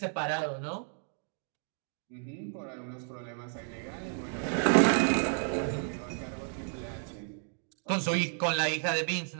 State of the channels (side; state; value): left; silent; 56 dB below the other